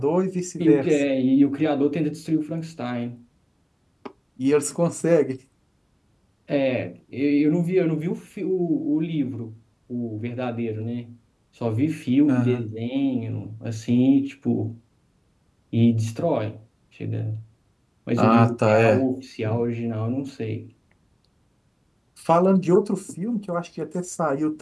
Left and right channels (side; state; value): both; identical; correlation 1.00